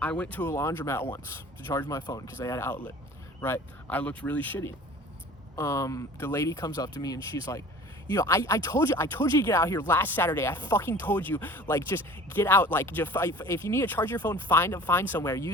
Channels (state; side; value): normal; both; correlation 0.44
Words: went to a laundromat once to charge my phone because they had an outlet, right? I looked really shitty. The lady comes up to me and she's like, I told you to get out here last Saturday. I fucking told you, just get out. If you need to charge your phone, find somewhere.